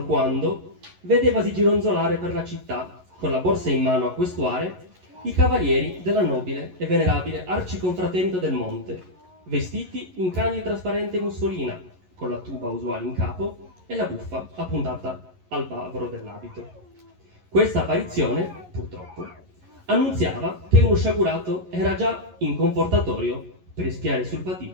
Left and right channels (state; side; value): late; left; 11 ms